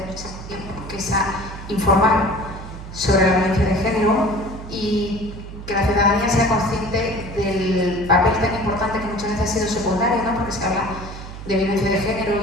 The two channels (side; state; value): right; noise; hum, 12 dB below the sound